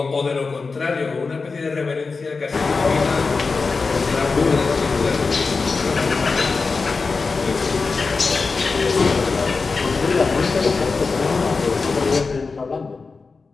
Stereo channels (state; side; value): quieter; right; 4.4 dB